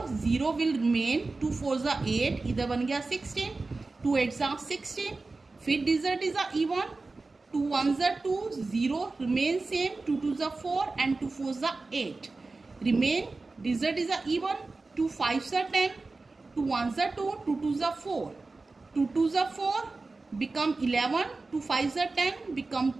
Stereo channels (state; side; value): quieter; left; 3.6 dB